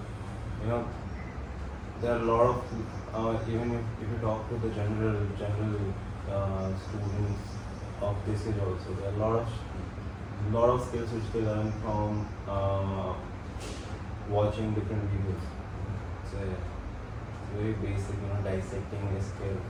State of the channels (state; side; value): identical; both; correlation 1.00